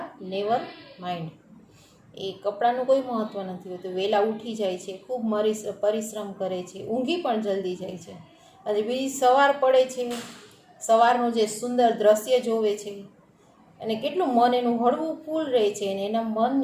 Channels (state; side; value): identical; both; correlation 1.00